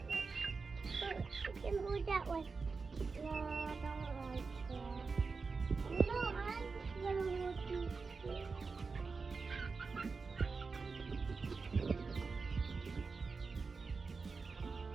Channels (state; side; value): quieter; left; 4.5 dB